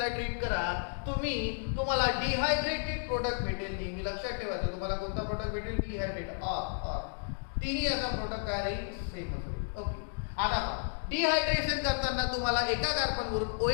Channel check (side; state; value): right; silent; digital silence